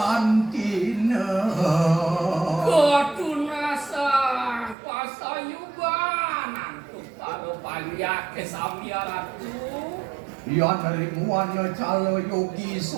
ketunasa pasayuban untuk pada panjang kesamiaratu. Yan ring wanya calo yogi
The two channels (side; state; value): left; drops out; at 4.8 s